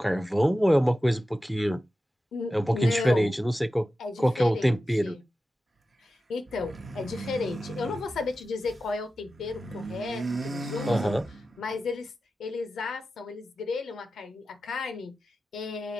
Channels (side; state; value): both; normal; correlation 0.93